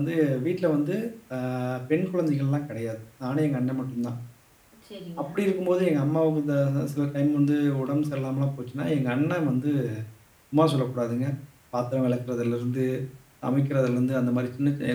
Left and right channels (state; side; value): identical; both; correlation 1.00